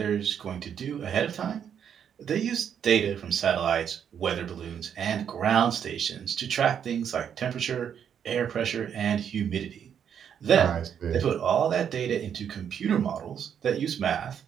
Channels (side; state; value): left; quieter; 8.4 dB